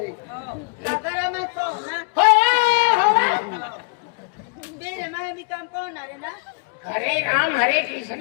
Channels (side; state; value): right; quieter; 34.3 dB